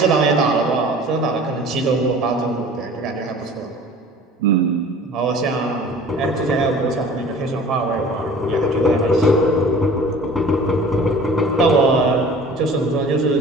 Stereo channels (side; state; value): both; normal; correlation 0.45